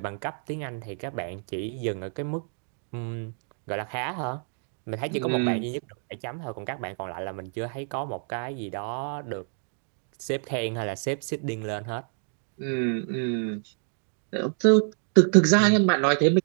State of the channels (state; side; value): silent; left; 59 dB below the other